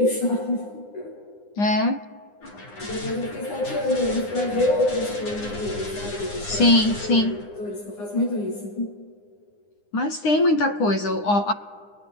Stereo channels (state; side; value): late; right; 9.8 ms